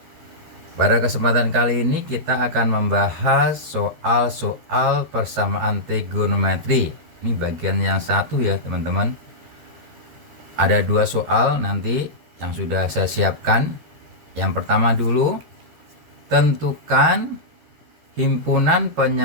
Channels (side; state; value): left; late; 13 ms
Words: Pada kesempatan kali ini kita akan membahas soal-soal persamaan trigonometri. Ini bagian yang satu ya teman-teman. Ada dua soal nanti yang sudah saya siapkan. Yang pertama dulu, tentukan himpunan